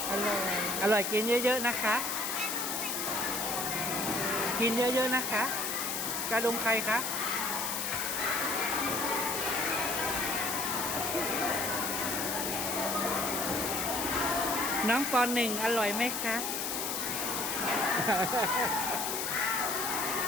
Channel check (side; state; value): left; noise; hiss, 2 dB below the sound